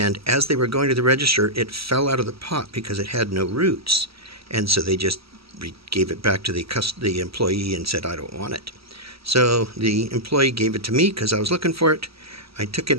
as they were going to the register, it fell out of the pot because it had no roots. And so they just gave it back to the employee and said, I don't want it. So the employee gave it to me because I was looking for it. I took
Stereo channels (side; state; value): left; late; 0.76 ms